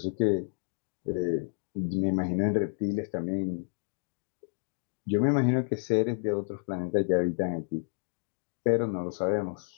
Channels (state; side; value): silent; right; digital silence